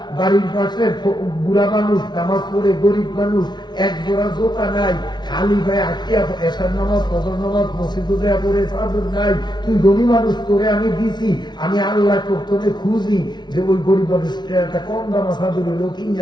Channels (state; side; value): late; right; 0.20 ms